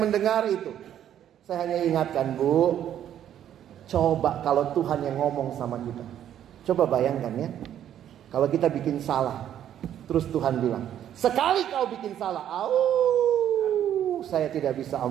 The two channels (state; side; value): quieter; left; 10.6 dB